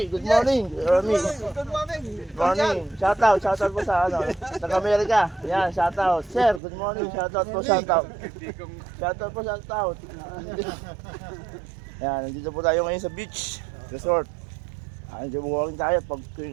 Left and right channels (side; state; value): left; drops out; at 6.6 s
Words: good morning. Yomi, Good morning. good morning. Shoutout po sa taga-Amerika. Yan, shoutout. Sir, good morning. Shoutout po, shoutout. Shoutout po, shoutout. Yan, nandito po tayo ngayon sa beach resort. Nandito po tayo pag